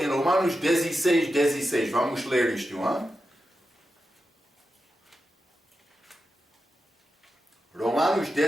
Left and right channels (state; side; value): normal; both; correlation 0.90